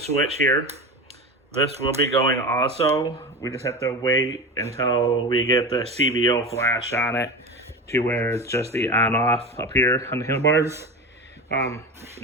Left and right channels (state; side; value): normal; both; correlation 0.26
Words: here. This will be going also. We just have to wait until we get the CVO flash on it to where it's just the on off up here on the handlebars.